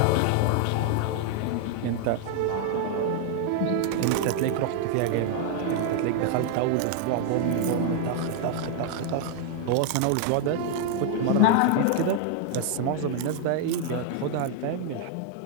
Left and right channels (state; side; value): different; both; correlation 0.00